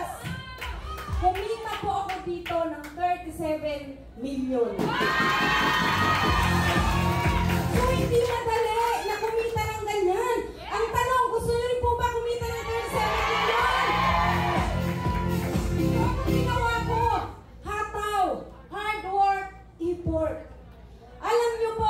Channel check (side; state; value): both; identical; correlation 1.00